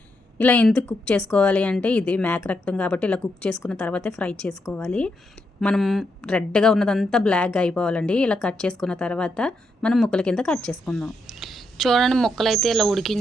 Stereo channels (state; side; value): normal; both; correlation 0.81